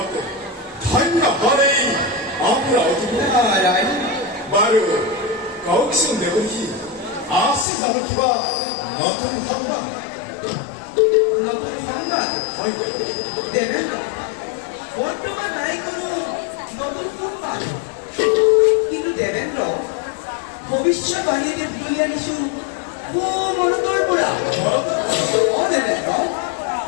ধন্য হলেই অমৰাৱতীপুৰ বাৰু কওকচোন দেৱকী আছে জানো কিবা নতুন সংবাদ নতুন সংবাদ হয় দেবেন্দ্ৰ বৰ্তমান নাই কোনো নতুন সংবাদ কিন্তু দেবেন্দ্ৰ ভৱিষ্যত বাহিনীয়ে তুলি আনিছো মনটোৰ পৰা দেবেন্দ্ৰ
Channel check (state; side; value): drops out; right; at 7.7 s